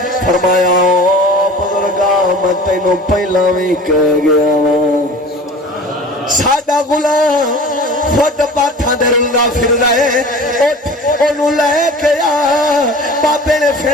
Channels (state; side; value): normal; both; correlation 0.40